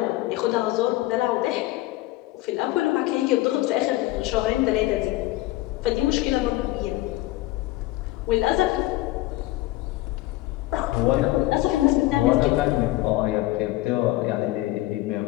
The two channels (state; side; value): quieter; right; 17.7 dB